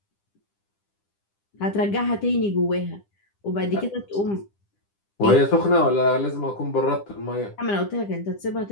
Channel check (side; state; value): right; late; 10 ms